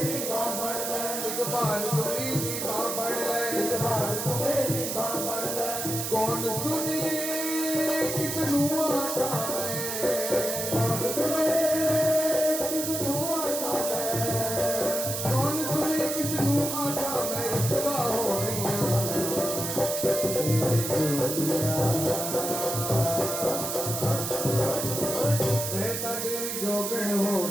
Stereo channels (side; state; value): right; noise; hiss, 3 dB below the sound